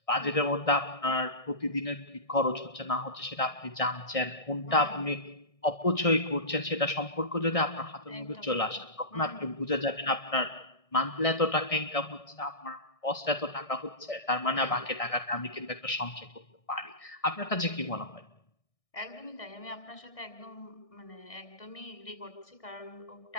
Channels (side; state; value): right; late; 1.6 ms